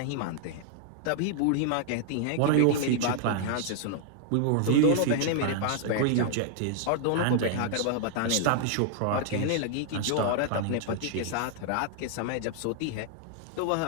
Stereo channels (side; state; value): both; different; correlation 0.00